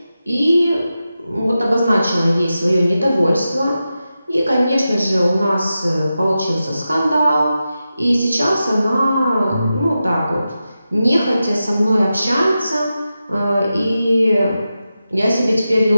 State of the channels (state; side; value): inverted; both; correlation -0.91